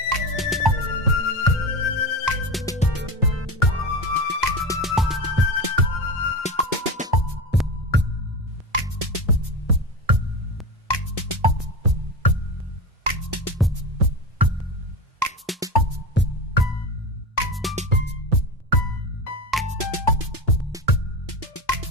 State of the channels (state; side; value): normal; both; correlation 0.23